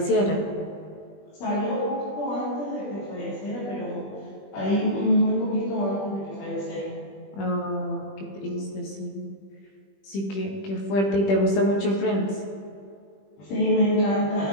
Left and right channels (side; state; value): right; late; 20 ms